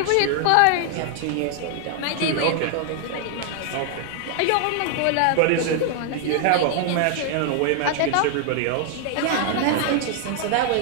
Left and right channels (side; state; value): both; different; correlation 0.00